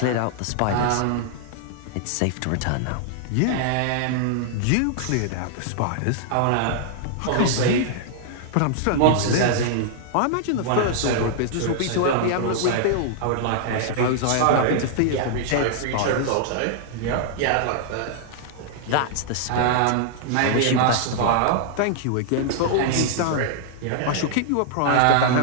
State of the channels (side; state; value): both; different; correlation -0.01